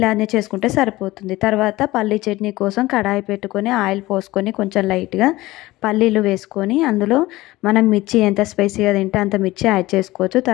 చేసుకుంటే సరిపోతుంది. తర్వాత పల్లీ చట్నీ కోసం కడాయి పెట్టుకొని ఆయిల్ పోసుకొని కొంచెం లైట్గా పల్లీలు వేసుకొని అందులో మనం మిర్చి ఎంత స్పైసీగా తింటే అంత మిర్చి యాడ్ చేసుకోవచ్చు.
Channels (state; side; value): quieter; right; 18.5 dB